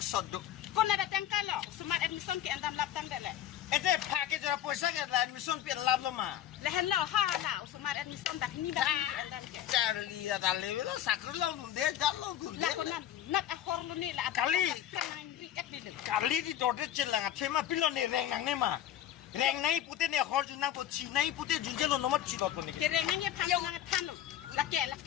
Kau nak datang kalau smart admission ke andam laptang deh. Itu pakai cara puasa ke dalam admission pi lab lo mah. Lehen lo ha lah smart admission tak ni dah andam ke. Cari ya dalam itu sakit lo tunde, jalan tunde. Lah kau nak akhor lo ni lah. Kali. Kan riak di lu. Kali di dorte celang, cuma pilon nih reng nang nih mah. Reng nai putih nih hor junang put si nai putih junjel lo nomor cilo tuh nih. Kerengannya panjang tan lo.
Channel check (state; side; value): quieter; right; 11.5 dB